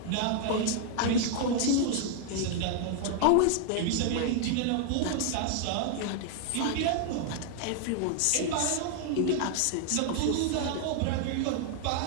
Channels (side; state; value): both; different; correlation 0.00